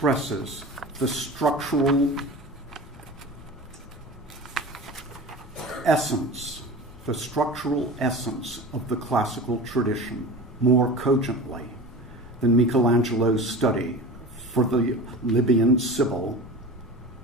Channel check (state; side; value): normal; both; correlation 0.33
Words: the structural essence of the classical tradition more cogently than Michelangelo's study for the Libyan Sibyl